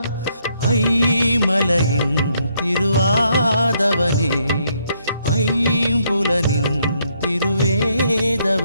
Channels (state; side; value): inverted; both; correlation -0.73